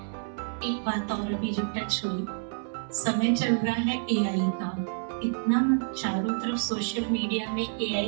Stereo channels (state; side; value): silent; left; 59 dB below the other